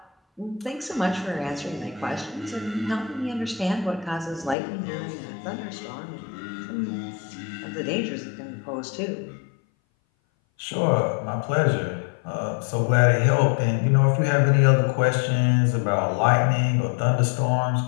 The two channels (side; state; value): right; drops out; at 4.5 s